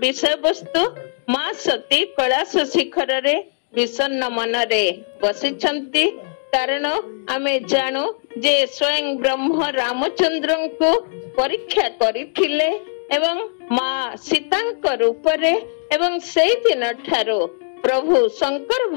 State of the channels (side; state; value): right; silent; digital silence